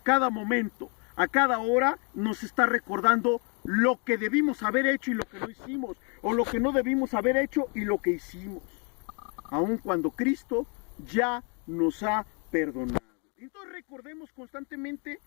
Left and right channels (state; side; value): quieter; right; 36.4 dB